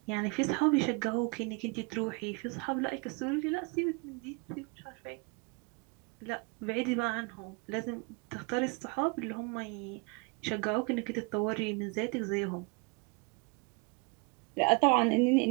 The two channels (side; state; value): left; quieter; 30.1 dB